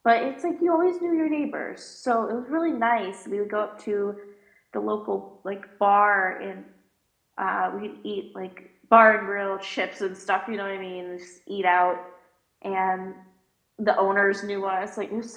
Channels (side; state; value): both; identical; correlation 1.00